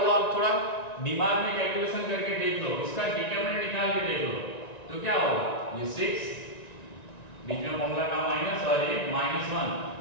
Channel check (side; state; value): right; late; 1.9 ms